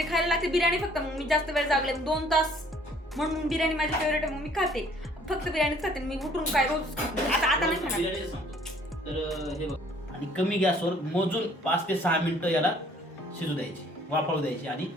खायला लागते बिर्याणी फक्त. मग मी जास्त वेळ जागले 2 तास म्हणून बिर्याणी माझी फेवरेट आहे. मग मी खाते फक्त बिर्याणीच खाते. मी उठून काय रोज आता नाही खाणार. बिर्याणी सांगतो. तर हे बघ आणि कमी गॅसवर मोजून 5 ते 6 मिनिटं याला शिजू द्यायची. वाफळू द्यायची आणि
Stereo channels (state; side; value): normal; both; correlation 0.58